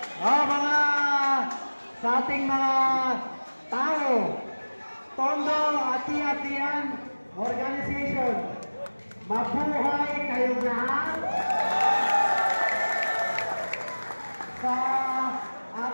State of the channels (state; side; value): inverted; both; correlation -1.00